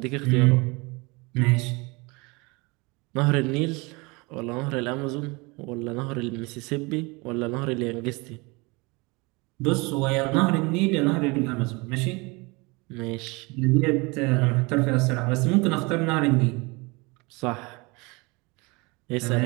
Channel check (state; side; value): quieter; left; 26.6 dB